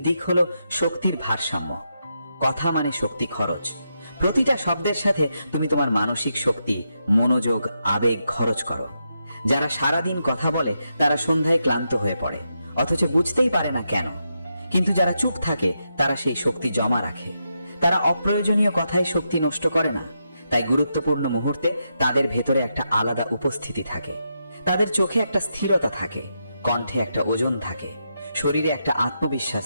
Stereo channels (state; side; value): inverted; both; correlation -0.84